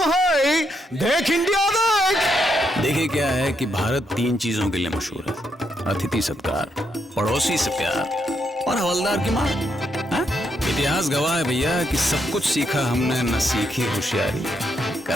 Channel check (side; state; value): both; normal; correlation 0.78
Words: है देख इंडिया देख। देखिए क्या है कि भारत 3 चीजों के लिए मशहूर है, अतिथि सत्कार, पड़ोसी से प्यार और हवलदार की मां। इतिहास गवाह है भैया कि सब कुछ सीखा हमने, न सीखी होशियारी।